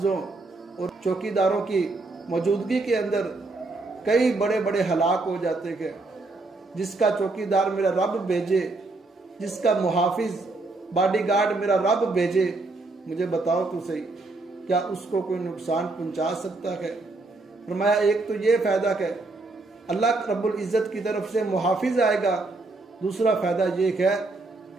और चौकीदारों की मौजूदगी के अंदर कई बड़े बड़े हलाक हो जाते हैं। जिसका चौकीदार मेरा रब भेजे, जिसका मुहाफिज बॉडीगार्ड मेरा रब भेजे, मुझे बताओ तो सही क्या उसको कोई नुकसान पहुंचा सकता है? फरमाया एक तो ये फायदा है अल्लाह रब्बुल इज्जत की तरफ से मुहाफिज आएगा, दूसरा फायदा ये है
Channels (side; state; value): left; quieter; 3.3 dB